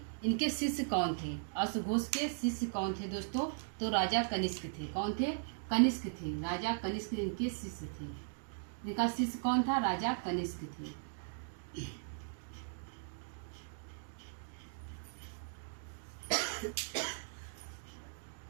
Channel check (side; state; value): left; silent; digital silence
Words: इनके शिष्य कौन थे? अश्वघोष के शिष्य कौन थे दोस्तों? तो राजा कनिष्क थे। कौन थे? कनिष्क थे। राजा कनिष्क इनके शिष्य थे। इनका शिष्य कौन था? राजा कनिष्क थे।